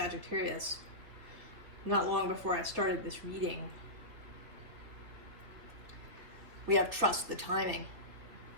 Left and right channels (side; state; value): left; late; 3.4 ms